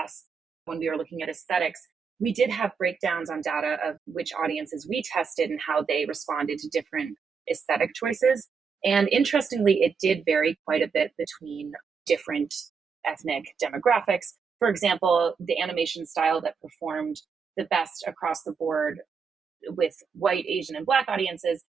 when we were looking at aesthetics, we did have breakdowns on data of which audiences we tested and how they responded to different aesthetic choices. And interestingly, it did vary quite a bit between different ethnic demographics. For example, the animation style that performed the best across the board with white, Asian, and Black audiences,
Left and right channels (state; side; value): quieter; left; 5.7 dB